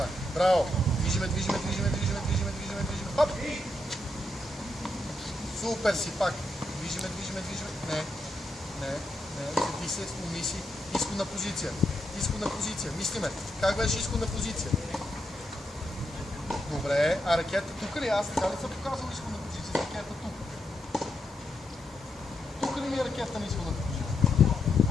Браво. Движиме. Хоп. Супер си пак. Движиме. Не. Седи се, умни си. Изходна позиция. Мислиме. Как беше изходна позиция? Добре. А ракета тук ли? Аз така ли съм показал изходна позиция? Ракета тук. Тук ли ми е ракета на изходната позиция?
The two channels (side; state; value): both; normal; correlation 0.82